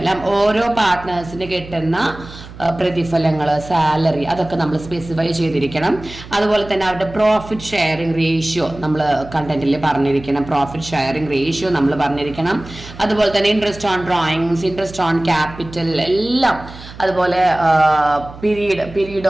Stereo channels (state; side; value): noise; right; hum, 16 dB below the sound